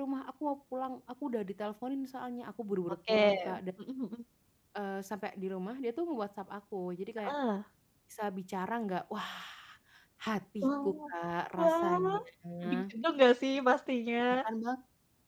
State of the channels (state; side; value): identical; both; correlation 1.00